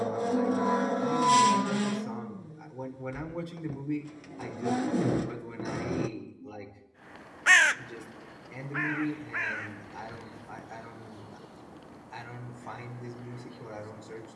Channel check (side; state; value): both; identical; correlation 1.00